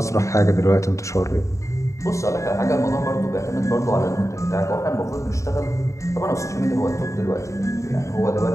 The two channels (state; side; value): late; right; 0.15 ms